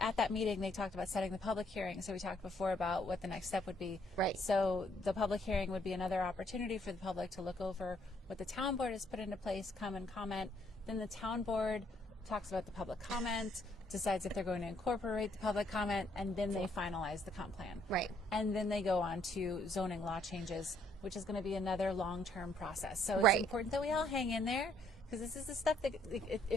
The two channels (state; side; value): normal; both; correlation 0.68